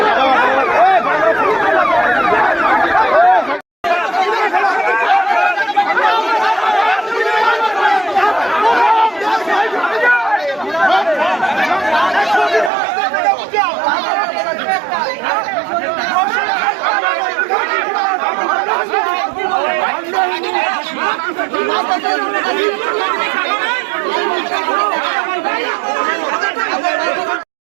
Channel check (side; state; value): left; drops out; at 12.7 s